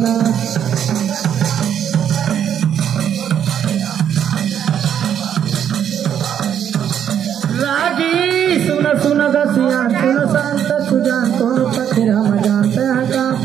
रागी सुन सुन गसिया सुन शांत सुजान कौन पति राम जानता का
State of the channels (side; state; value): left; quieter; 9.2 dB